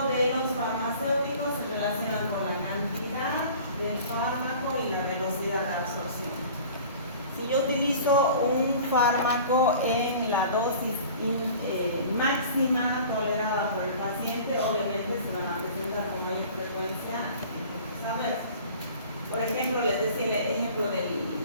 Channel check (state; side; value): inverted; both; correlation -0.45